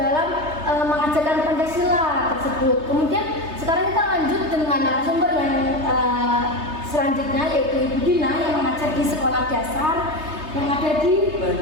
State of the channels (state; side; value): late; left; 3.3 ms